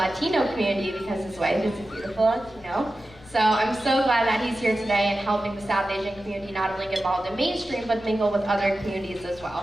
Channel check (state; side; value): noise; left; rumble, 23 dB below the sound